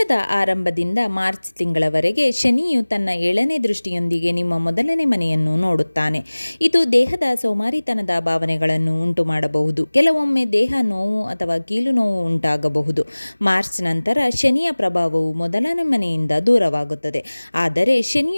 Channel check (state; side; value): inverted; both; correlation -1.00